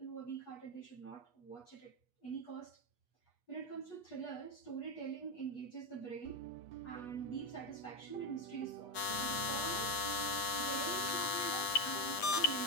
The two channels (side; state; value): right; late; 8.3 ms